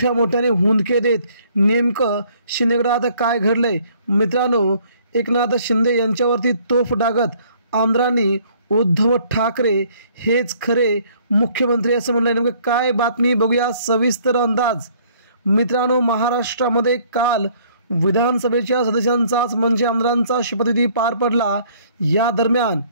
मोठ्याने हुंदके देत। नेमकं शिंदे गटात काय घडलंय? मित्रांनो, एकनाथ शिंदे यांच्यावरती तोफ डागत आमदारांनी उद्धव ठाकरे हेच खरे मुख्यमंत्री असं म्हणलं। नेमकं काय बातमी बघूया सविस्तर अंदाज। मित्रांनो, महाराष्ट्रामध्ये काल विधानसभेच्या सदस्यांचाच म्हणजे आमदारांचा शपथविधी पार पडला। या दरम्यान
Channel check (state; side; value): inverted; both; correlation -0.60